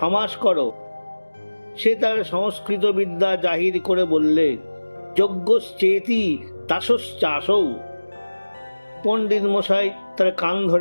করো। সে তার সংস্কৃত বিদ্যা জাহির করে বললে, যজ্ঞশ্চেতি তাসশ্চাসৌ। পণ্ডিত মশাই তার কান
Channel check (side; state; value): both; inverted; correlation -1.00